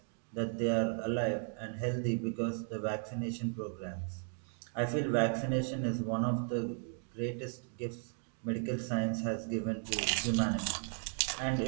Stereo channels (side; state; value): left; silent; 54 dB below the other